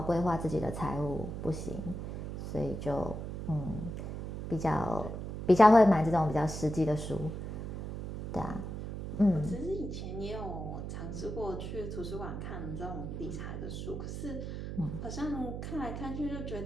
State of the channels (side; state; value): right; noise; hum, 6 dB below the sound